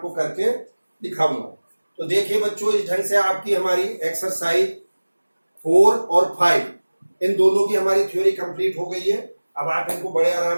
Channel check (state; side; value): inverted; both; correlation -1.00